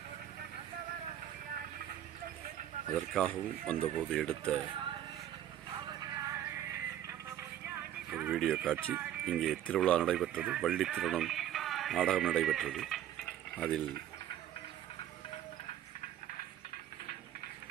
அதற்காகவும் வந்தபோது எடுத்த ஒரு வீடியோ காட்சி. இங்கே திருவிழா நடைபெற்றது, வள்ளி திருமணம் நாடகம் நடைபெற்றது. அதில்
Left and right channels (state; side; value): quieter; left; 11.6 dB